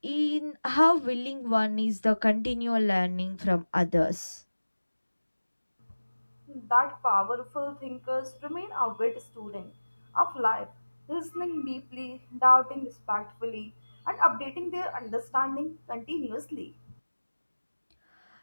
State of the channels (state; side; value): inverted; both; correlation -1.00